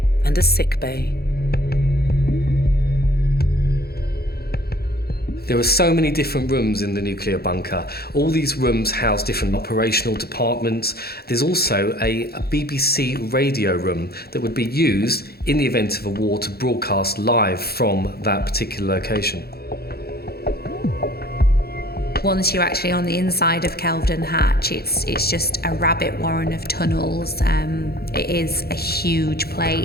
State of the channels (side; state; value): right; late; 0.46 ms